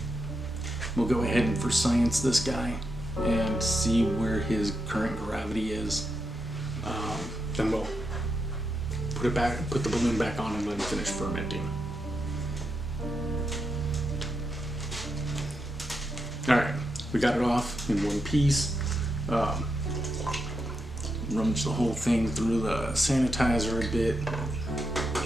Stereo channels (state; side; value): normal; both; correlation 0.84